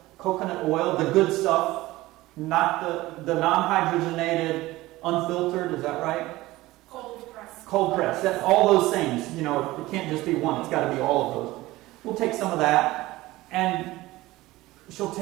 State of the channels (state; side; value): quieter; left; 18.3 dB